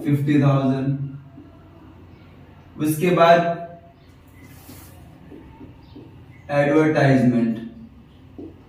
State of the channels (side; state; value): both; identical; correlation 1.00